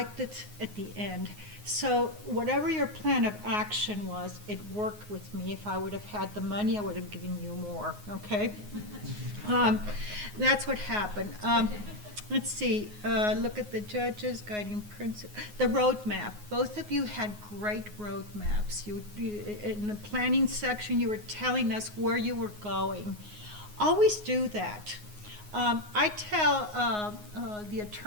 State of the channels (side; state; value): left; late; 9.5 ms